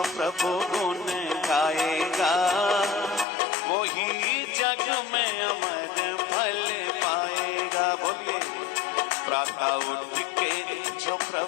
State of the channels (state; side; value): drops out; right; at 3.2 s